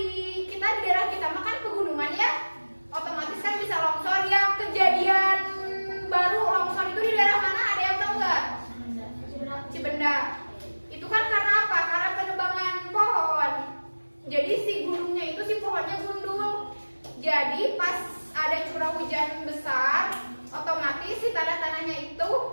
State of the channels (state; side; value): inverted; both; correlation -1.00